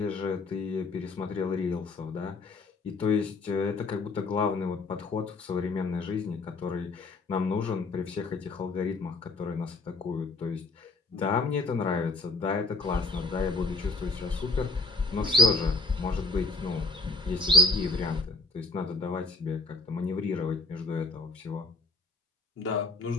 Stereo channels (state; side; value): quieter; right; 3.3 dB